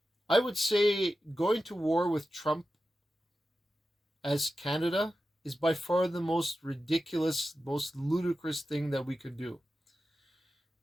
I would say going to war with Trump as Canada is by far the most ridiculous, most ludicrous thing that we could do.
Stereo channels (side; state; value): both; normal; correlation 0.92